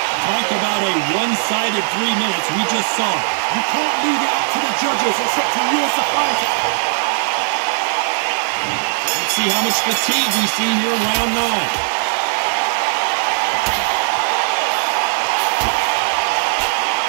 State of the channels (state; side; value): silent; left; 67 dB below the other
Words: Talk about a one-sided 3 minutes we just saw. You can't leave it up to the judges. It's up to you as the fighter. Let's see how much fatigue we see here in round 9.